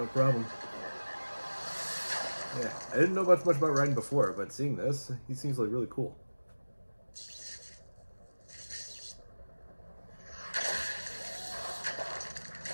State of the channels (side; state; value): both; inverted; correlation -1.00